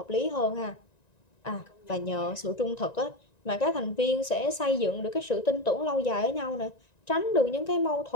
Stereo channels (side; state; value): right; late; 1.9 ms